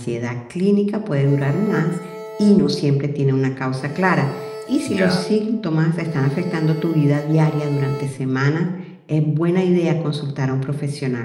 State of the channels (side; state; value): both; identical; correlation 1.00